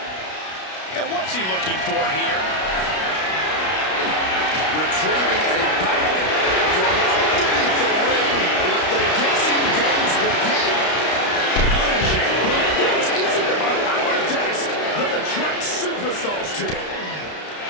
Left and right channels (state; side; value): late; right; 32 ms